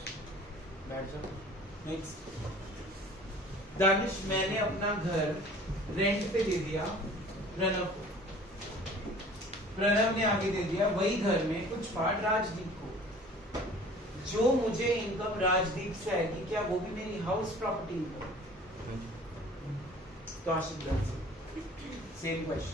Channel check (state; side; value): normal; both; correlation 0.47